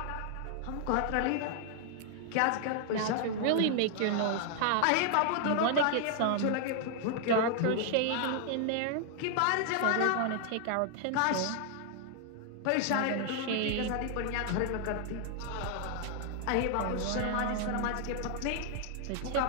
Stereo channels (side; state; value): both; different; correlation 0.00